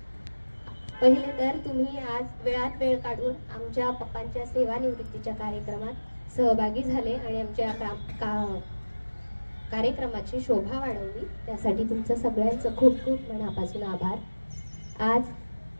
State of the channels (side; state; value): both; inverted; correlation -1.00